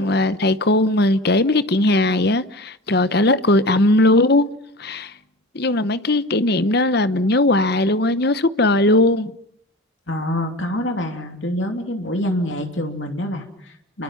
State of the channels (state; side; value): normal; both; correlation 0.34